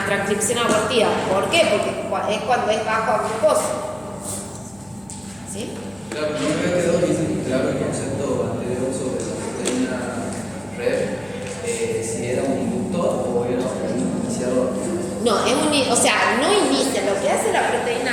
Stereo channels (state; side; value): noise; left; hum, 26 dB below the sound